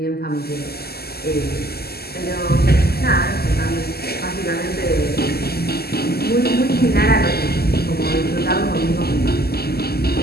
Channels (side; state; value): right; late; 0.46 ms